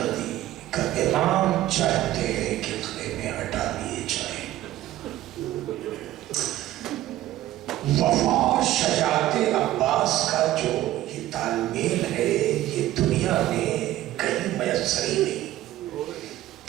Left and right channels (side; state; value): left; quieter; 14.5 dB